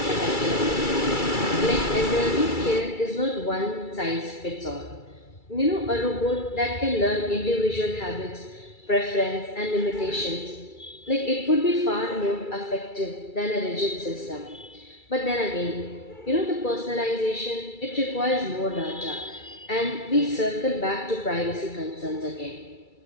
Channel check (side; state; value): right; late; 2.3 ms